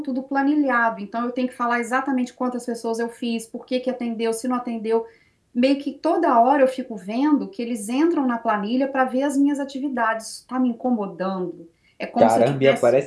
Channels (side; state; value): both; identical; correlation 1.00